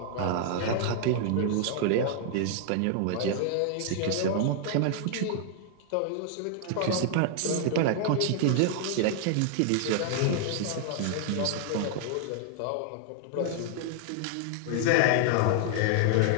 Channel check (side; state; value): both; different; correlation 0.00